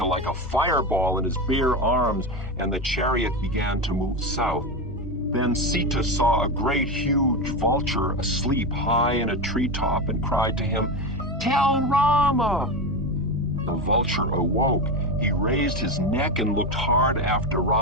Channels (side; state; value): both; normal; correlation 0.17